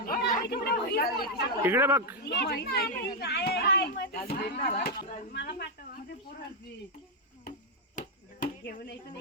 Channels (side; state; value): both; normal; correlation -0.01